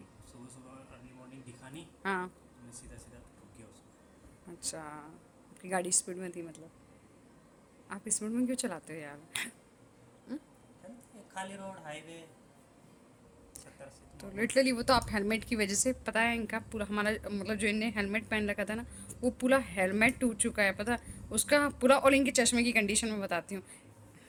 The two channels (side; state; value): both; identical; correlation 1.00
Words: सुबह सुबह अर्ली मॉर्निंग दिखा नहीं, हाँ। तो मैं सीधा सीधा ठुक गया उसको। अच्छा, आपकी गाड़ी स्पीड में थी मतलब? आप स्पीड में क्यों चलाते हो यार? जानते हैं, खाली रोड हाईवे 70 80 तो तो नॉर्मल लिटरली वो चलता तो आप हेलमेट की वजह से, पता है इनका पूरा हमारा मतलब जो इनने हेलमेट पहन रखा था ना, वो पूरा हेलमेट टूट चुका है, पता है उसका पूरा। और इनके चश्मे की कंडीशन में बताती हूँ, है।